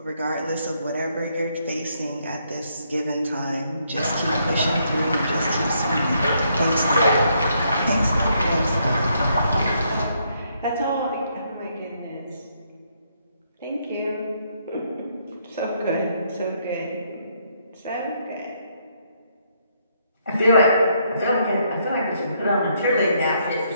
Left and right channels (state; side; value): inverted; both; correlation -0.73